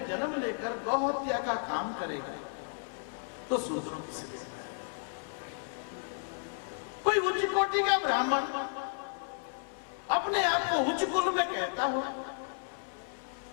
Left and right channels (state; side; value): silent; right; 56 dB below the other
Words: जन्म लेकर गौ हत्या का काम करेगा तो शूद्रों की स्थिति है। कोई उच्च कोटि का ब्राह्मण अपने आप को उच्च कुल में कहता हो